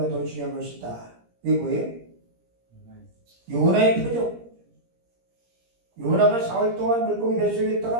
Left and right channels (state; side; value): late; left; 17 ms